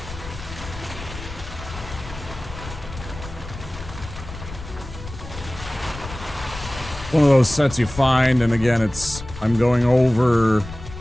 one of those sets you find, and again, I'm going over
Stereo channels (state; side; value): noise; left; rumble, 12 dB below the sound